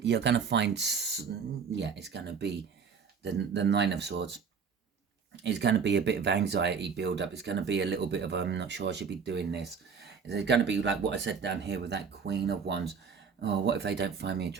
you're going to find, it's going to be the 9 of Swords. It's going to be a bit of anxiety build up. It's going to be a little bit of, I'm not sure I should be doing this. It's going to be like what I said down here with that Queen of Wands. Oh, what if they don't find me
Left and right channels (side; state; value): left; quieter; 6.0 dB